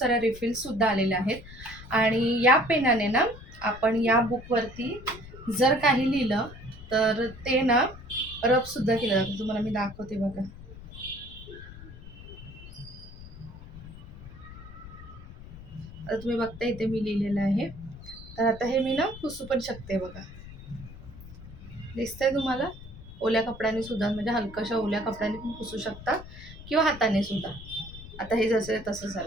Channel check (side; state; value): left; noise; rumble, 15 dB below the sound